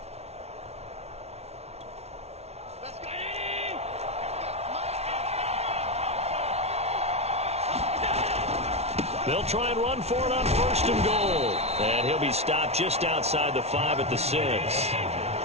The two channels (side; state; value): left; late; 0.31 ms